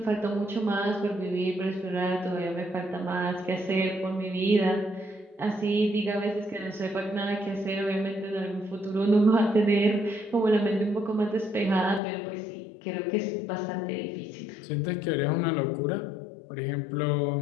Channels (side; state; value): right; drops out; at 12.0 s